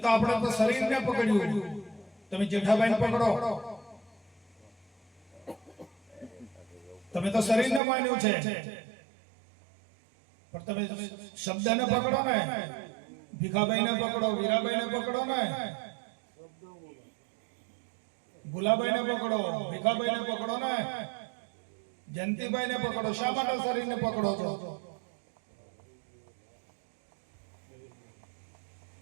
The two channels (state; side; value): drops out; left; at 7.8 s